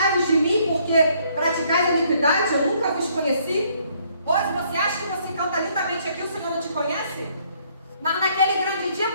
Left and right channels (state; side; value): inverted; both; correlation -0.67